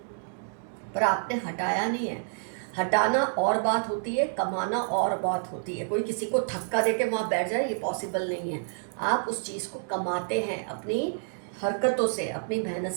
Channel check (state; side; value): silent; left; digital silence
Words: पर आपने हटाया नहीं है। हटाना और बात होती है, कमाना और बात होती है। कोई किसी को धक्का दे के वहाँ बैठ जाए, ये पॉसिबल नहीं है। आप उस चीज़ को कमाते हैं अपनी हरकतों से, अपनी मेहनत